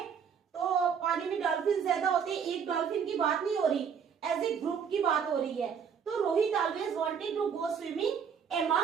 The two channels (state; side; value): quieter; left; 7.1 dB